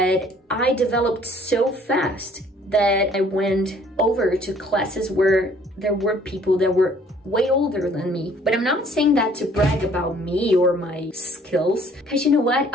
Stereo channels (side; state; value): both; normal; correlation 0.58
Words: I developed so fast that I went over to classes where there were people that were way older than me. But I'm not saying that to brag about me or my skills, because you know what?